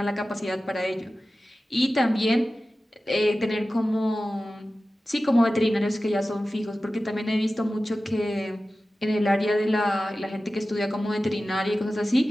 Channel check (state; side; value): normal; both; correlation 0.95